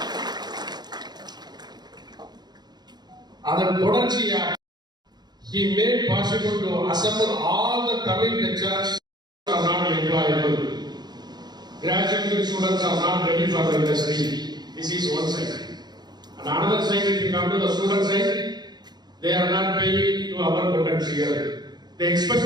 அதன் தொடர்ச்சியாக he made possible to assemble all the Tamil lecturers are not employable. Graduate students are not ready for the industry. This is one side. And another side, if you come to the student side, they are not paying to our potential. The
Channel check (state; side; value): late; left; 0.20 ms